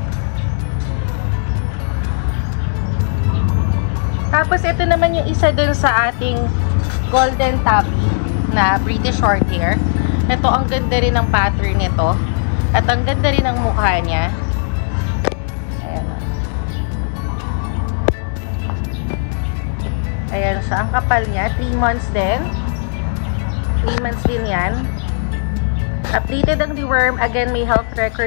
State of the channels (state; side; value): silent; right; digital silence